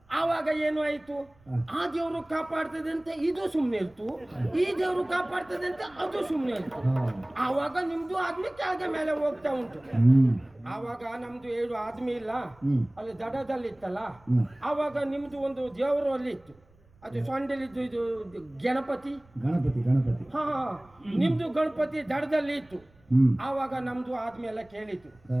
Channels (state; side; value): noise; right; rumble, 29 dB below the sound